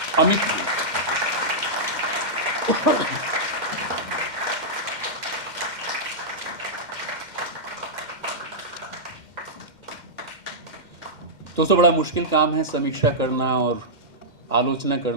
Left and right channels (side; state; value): left; late; 2.1 ms